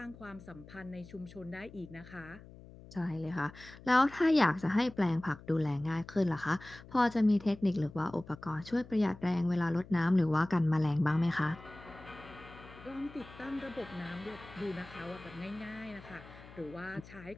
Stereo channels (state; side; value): noise; left; hum, 19 dB below the sound